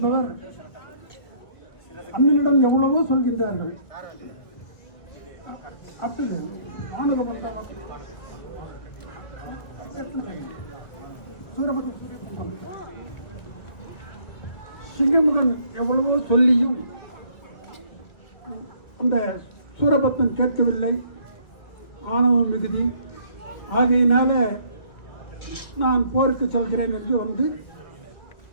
அண்ணனிடம் எவ்வளவோ சொல்கின்றார்கள். சிங்கமுகன் எவ்வளவோ சொல்லியும் அந்த சூரபத்மன் கேட்கவில்லை. ஆணவம் மிகுதி. ஆகையினால நான் போருக்கு செல்கிறேன் என்று வந்து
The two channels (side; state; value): right; late; 1.7 ms